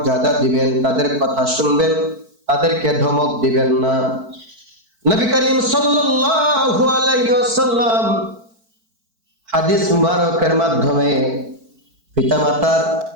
দিবেন, তাদের কথা শুনবেন, তাদেরকে ধমক দিবেন না। নবী করিম সাল্লাল্লাহু আলাইহি ওয়াসাল্লাম হাদিস মুবারকের মাধ্যমে পিতামাতার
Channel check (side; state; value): left; late; 4.5 ms